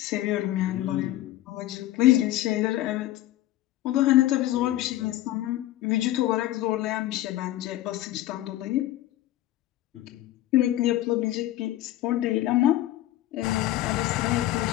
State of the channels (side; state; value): right; quieter; 14.8 dB